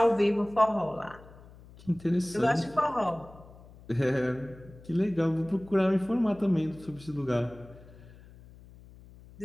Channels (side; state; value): left; noise; hum, 21 dB below the sound